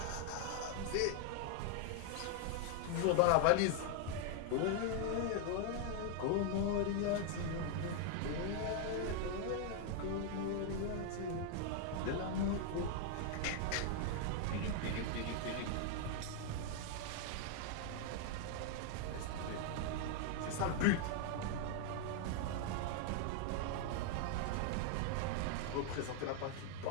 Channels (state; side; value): different; both; correlation 0.00